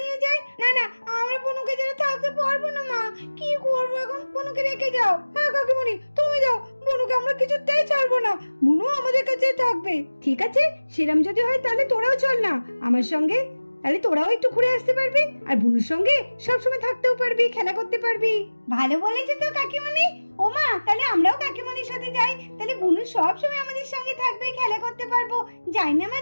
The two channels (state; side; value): inverted; both; correlation -1.00